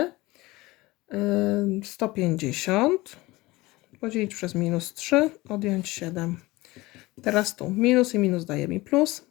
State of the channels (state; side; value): quieter; right; 20.4 dB